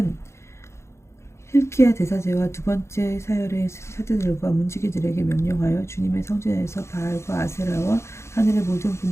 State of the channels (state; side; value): late; right; 0.13 ms